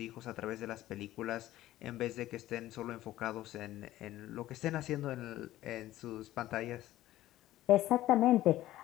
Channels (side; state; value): right; quieter; 14.9 dB